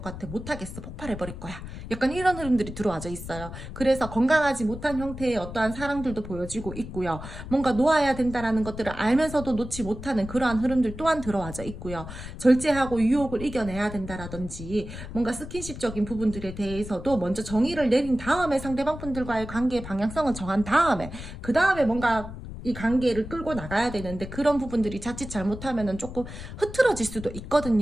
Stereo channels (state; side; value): noise; left; rumble, 11 dB below the sound